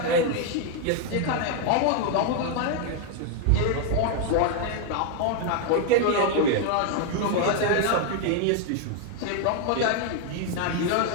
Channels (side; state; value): both; different; correlation 0.00